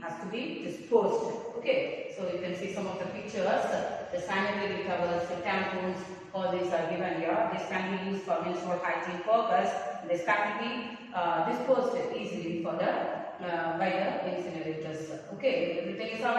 be disposed. Okay, so you can see some of the pictures. The sanitary towels, the tampons, all these are given here. This can be used for menstrual hygiene purpose. This can be disposed easily for the by the incinerators. Okay, everything is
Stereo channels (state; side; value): identical; both; correlation 1.00